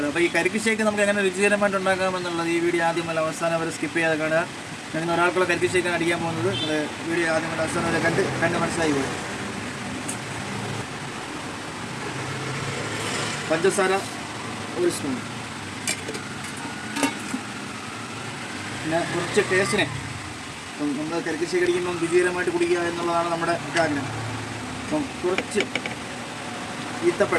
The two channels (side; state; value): both; identical; correlation 1.00